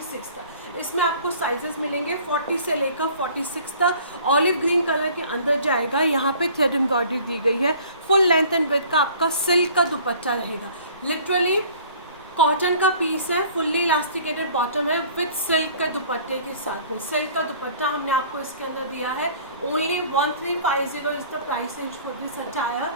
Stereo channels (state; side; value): inverted; both; correlation -0.50